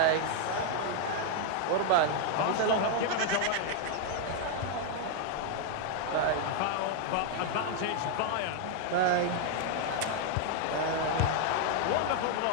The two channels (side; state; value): both; different; correlation 0.00